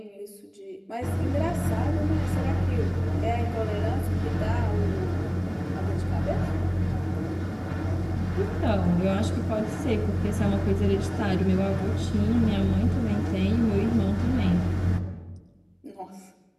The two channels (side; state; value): both; identical; correlation 1.00